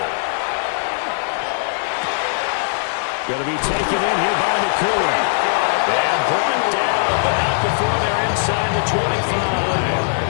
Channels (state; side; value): silent; right; digital silence